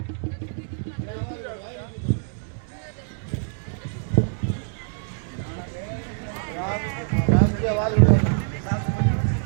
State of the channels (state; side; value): silent; left; digital silence